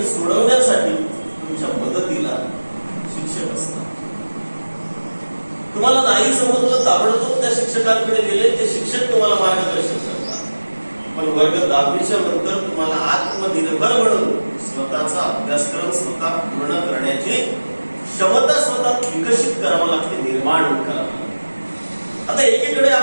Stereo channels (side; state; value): both; inverted; correlation -1.00